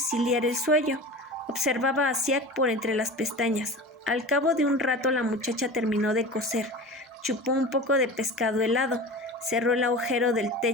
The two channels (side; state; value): both; normal; correlation 0.34